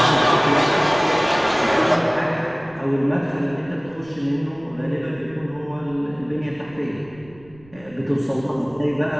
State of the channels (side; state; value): right; noise; rumble, 24 dB below the sound